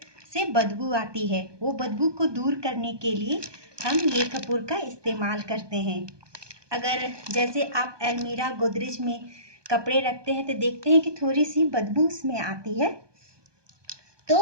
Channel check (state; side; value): late; left; 1.2 ms